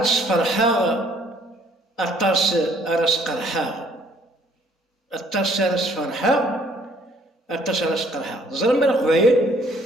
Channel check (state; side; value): normal; both; correlation 0.62